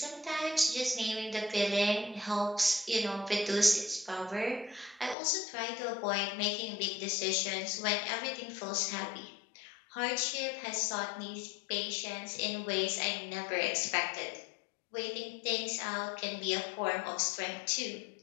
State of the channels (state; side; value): drops out; right; at 5.2 s